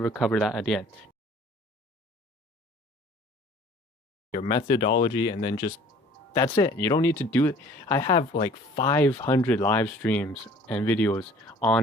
cover that at the end. Your methodology, and then just that's it. You don't need to do it. I have like 500 live streams and videos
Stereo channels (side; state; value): both; normal; correlation 0.51